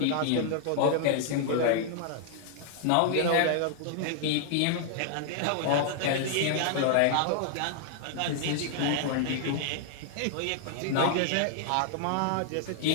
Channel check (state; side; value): different; both; correlation 0.00